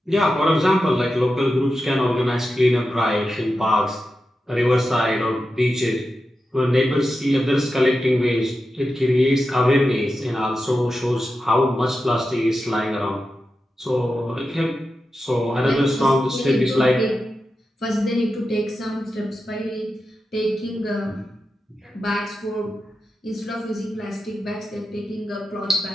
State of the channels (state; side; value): normal; both; correlation 0.90